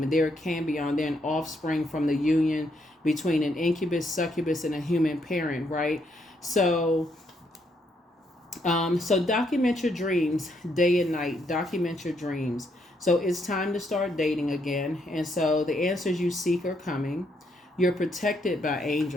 They're a cambion. They're an offspring from the union between an incubus, succubus, and a human parent, right? So document your dreams day and night. Document your dreams. So it's time to start dating again. And so the answers you seek are coming. You're protected by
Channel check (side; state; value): both; normal; correlation 0.75